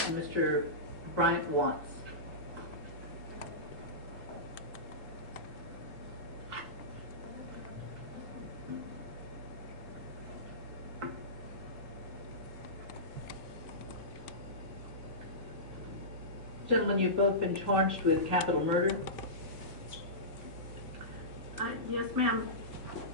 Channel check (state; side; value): normal; both; correlation -0.19